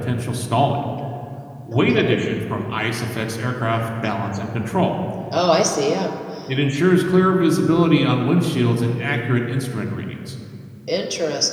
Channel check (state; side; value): identical; both; correlation 1.00